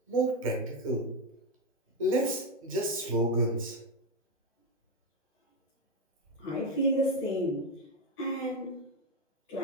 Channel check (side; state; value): both; normal; correlation 0.09